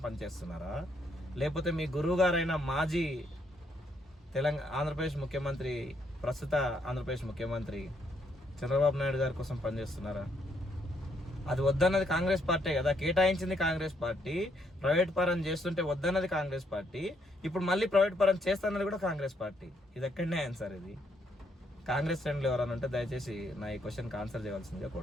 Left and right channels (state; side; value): normal; both; correlation 0.73